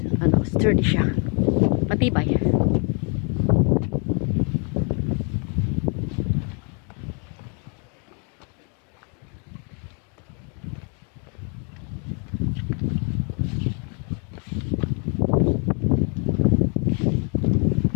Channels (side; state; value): right; quieter; 37.6 dB